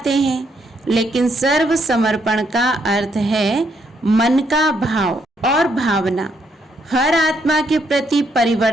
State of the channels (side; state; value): both; normal; correlation 0.74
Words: हैं। लेकिन सर्व समर्पण का अर्थ है मन का भाव और भावना हर आत्मा के प्रति